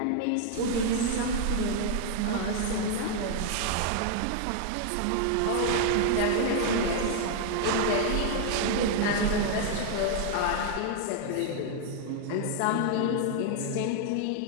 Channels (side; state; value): both; different; correlation 0.00